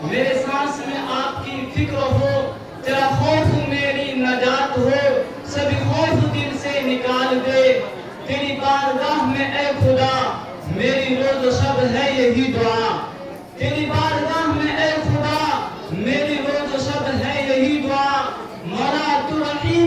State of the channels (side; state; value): both; identical; correlation 1.00